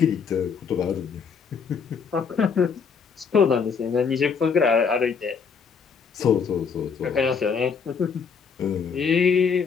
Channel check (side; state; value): right; quieter; 6.0 dB